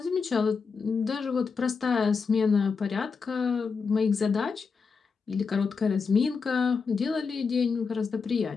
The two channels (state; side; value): quieter; right; 5.2 dB